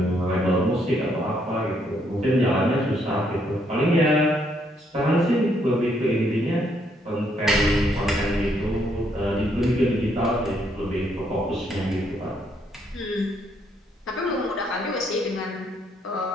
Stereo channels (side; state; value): both; normal; correlation 0.72